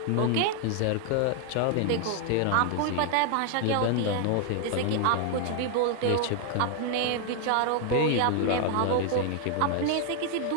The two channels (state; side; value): different; both; correlation 0.00